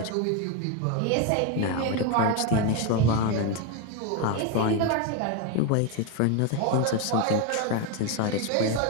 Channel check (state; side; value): different; both; correlation 0.02